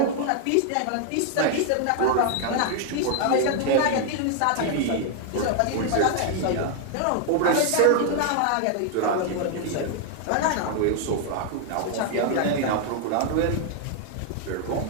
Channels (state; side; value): different; both; correlation 0.00